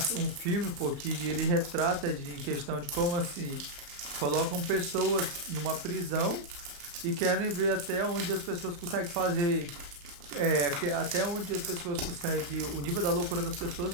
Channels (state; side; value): late; left; 34 ms